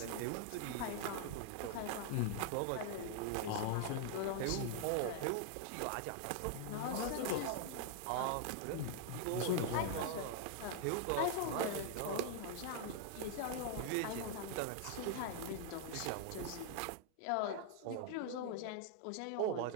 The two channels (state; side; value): different; both; correlation 0.00